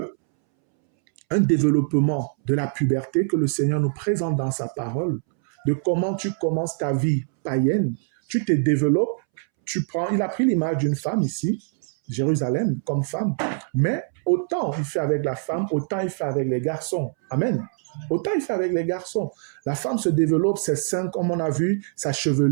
un développement de la puberté que le Seigneur nous présente dans sa parole, de comment tu commences ta vie païenne, tu te développes, il a pris l'image d'une femme ici, Jérusalem, comme femme, mais autant il fait avec la femme, autant il fait avec les garçons. Amen. Autant il fait avec les garçons. La femme se développe, ses seins, comme on a vu, sa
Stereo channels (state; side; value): silent; left; 63 dB below the other